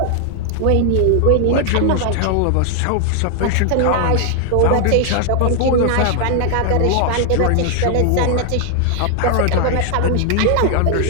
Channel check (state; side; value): different; both; correlation 0.00